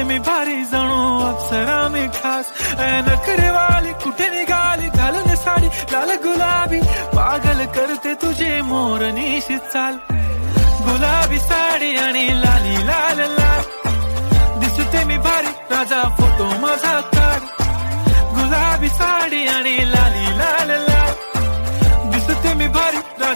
मी भारी जणू अप्सरा मी खास. नखरेवाली कुठे निघाली घालून साडी लाल गुलाबी, पागल करते तुझे मोरनीशी चाल. गुलाबी साडी आणि लाली लाल लाल, दिसते मी भारी राजा फोटो माझा काढ. गुलाबी साडी आणि लाली लाल लाल, दिसते मी भारी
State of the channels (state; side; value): inverted; both; correlation -1.00